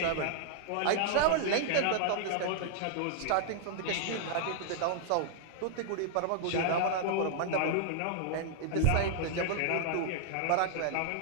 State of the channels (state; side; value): different; both; correlation -0.01